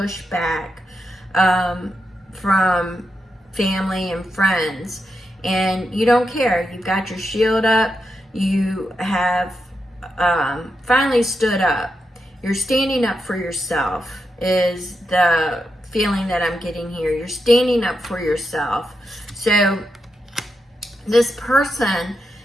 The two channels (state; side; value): normal; both; correlation 0.85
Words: from family and friends, and you don't care. You've got your shield up. You have finally stood up. You're standing up for yourself is the feeling that I'm getting here. You're standing up for yourself. So this person